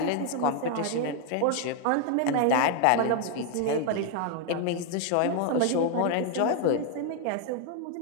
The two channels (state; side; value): different; both; correlation 0.00